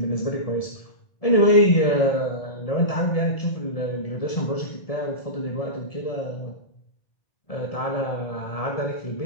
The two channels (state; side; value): late; right; 1.7 ms